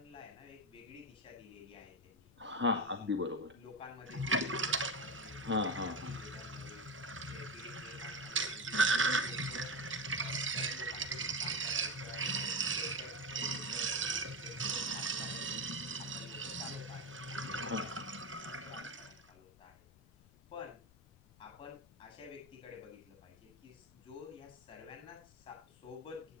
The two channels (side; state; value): left; noise; rumble, 25 dB below the sound